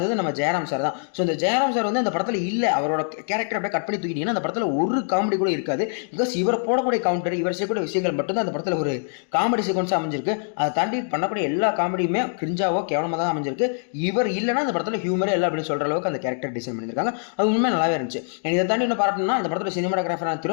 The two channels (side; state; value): right; silent; digital silence